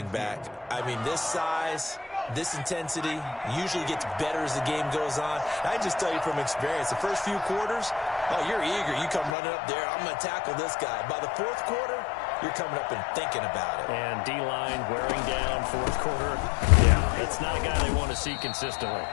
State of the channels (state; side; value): drops out; right; at 9.3 s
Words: back. I mean, this size, this intensity usually gets better as the game goes on. I just tell you from experience, the first few quarters, oh, you're eager. You come running up there, I'm going to tackle this guy. By the 4th quarter, you're coming up and thinking about it. And D-line wearing down 4th quarter. Yeah, it's not a guy they want to see consistently.